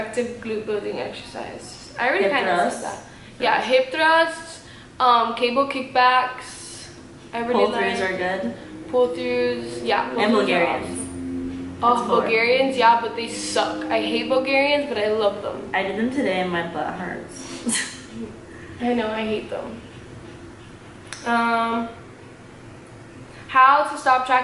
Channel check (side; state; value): both; identical; correlation 1.00